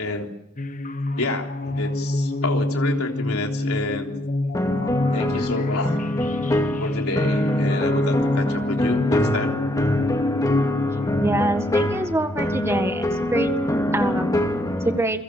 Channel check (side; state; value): both; normal; correlation 0.71